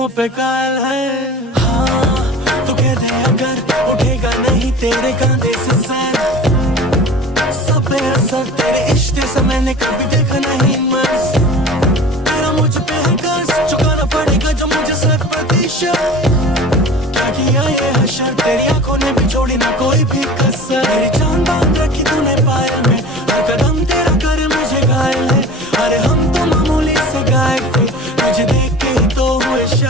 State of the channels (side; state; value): both; normal; correlation 0.39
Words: पे कायल है। हाँ तू कह दे अगर उठेगा नहीं तेरे कंधे से सर, सब पे असर तेरे इश्क से मैंने कभी देखा नहीं मर्ज। तेरा मुझ पे है कर्ज, चुकाना पड़ेगा जो मुझे 100%। क्या किया ये हशर, तेरी आंखों ने भी छोड़ी ना कोई भी कसर। मेरी जान बांध रखी तूने पायल में, हर कदम तेरा करे मुझे घायल है। अरे हम तो मामूली से गायक थे, तुझे देख के ही तो हुए